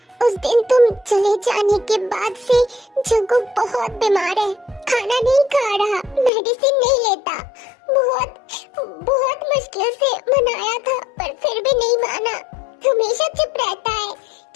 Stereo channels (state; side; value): drops out; right; at 6.3 s